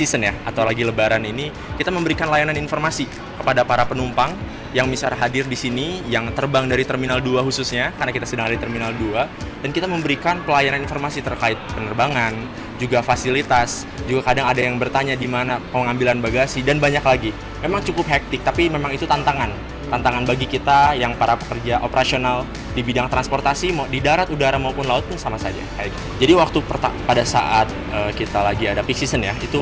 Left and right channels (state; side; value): identical; both; correlation 1.00